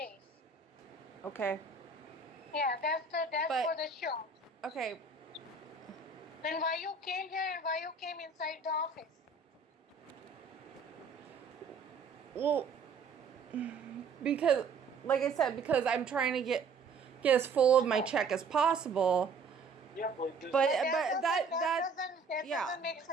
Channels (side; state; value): left; quieter; 4.4 dB